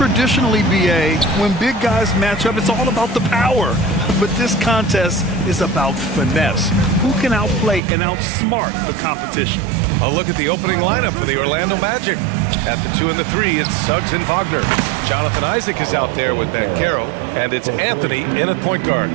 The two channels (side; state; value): left; drops out; at 7.8 s